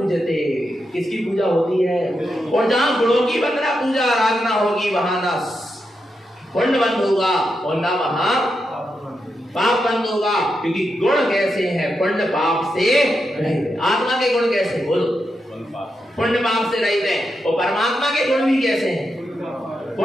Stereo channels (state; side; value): normal; both; correlation 0.86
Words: किसकी पूजा होती है? और जहां गुणों की वंदना पूजा आराधना होगी वहां ना पुण्य बंद होगा और ना वहां पाप बंद होगा। क्योंकि गुण कैसे हैं? पुण्य पाप से रहित। आत्मा के गुण कैसे? बोलो। पुण्य पाप से रहित है। और परमात्मा के गुण भी कैसे हैं?